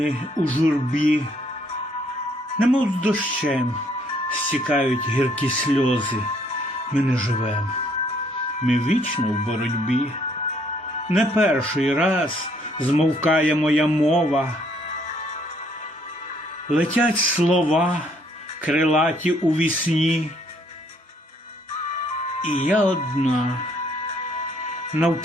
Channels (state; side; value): normal; both; correlation 0.66